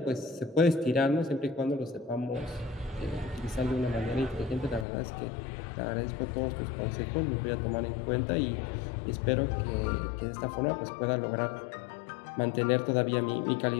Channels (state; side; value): drops out; right; at 4.9 s